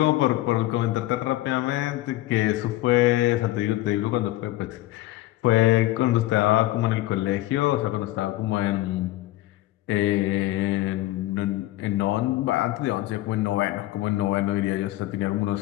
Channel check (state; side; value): quieter; right; 16.6 dB